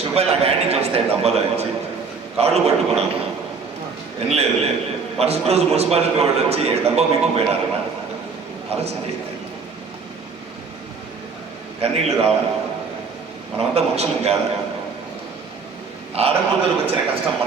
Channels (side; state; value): left; quieter; 5.0 dB